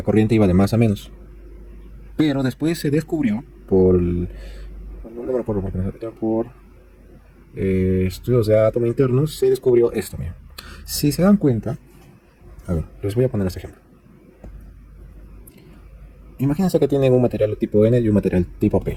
corriente iba de más a menos, pero después se descubrió no me acuerdo por estudios de átomo internos, se descubrió esto, mira. Si se dan cuenta, a ver, les voy a poner este ejemplo. Imagínense que tienen un material tipo N y un material tipo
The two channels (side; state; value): both; identical; correlation 1.00